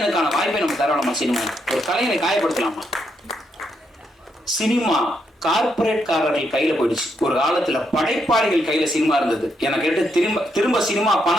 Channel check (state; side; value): normal; both; correlation 0.79